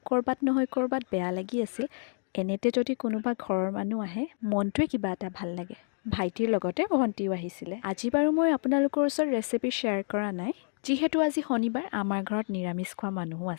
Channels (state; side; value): silent; right; 58 dB below the other